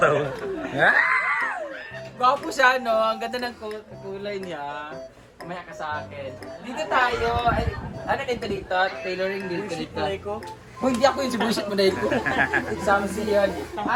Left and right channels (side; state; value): both; identical; correlation 1.00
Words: Gwapo siya, no? Ang ganda ng kulay niya. Kumaya ka sa akin. Dito tayo. Ay, ano dito dito? Tailoring dito dito. Kung hindi ako yung sibusit mo dahil ko. Examsi yun.